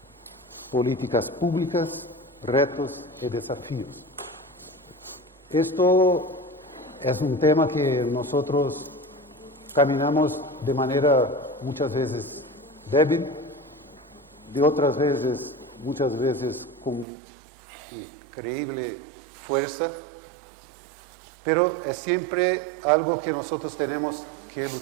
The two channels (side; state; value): left; drops out; at 17.1 s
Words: políticas públicas, retos y desafíos. Esto es un tema que nosotros caminamos de manera muchas veces débil, de otras veces, muchas veces con increíble fuerza, pero es siempre algo que nosotros tenemos que